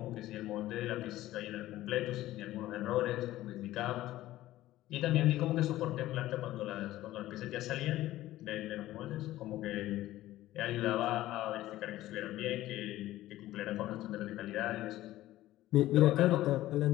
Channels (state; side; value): quieter; right; 15.4 dB